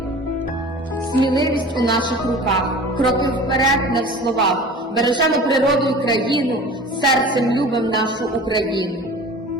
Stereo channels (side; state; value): both; normal; correlation 0.40